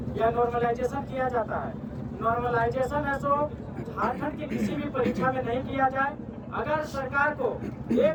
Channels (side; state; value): both; identical; correlation 1.00